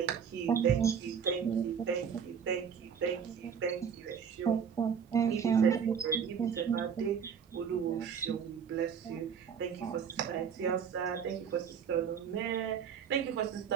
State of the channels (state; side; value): quieter; left; 7.2 dB